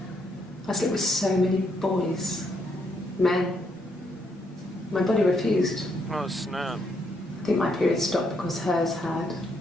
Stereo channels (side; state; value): both; normal; correlation 0.75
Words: I slept with so many boys, men. My body refused. Oh, snap. I think my period stopped because hers had.